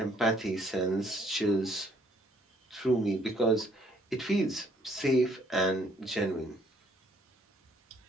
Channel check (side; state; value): both; normal; correlation 0.64